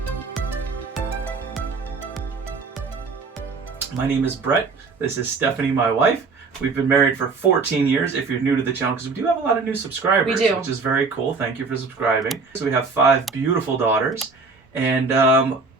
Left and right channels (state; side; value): quieter; left; 4.4 dB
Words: My name is Brett. This is Stephanie, my wife. We've been married for 14 years, if you're new to the channel, because we do have a lot of new subscribers. We do. Which is very cool. Thank you for subscribing. So we have 5 beautiful daughters, and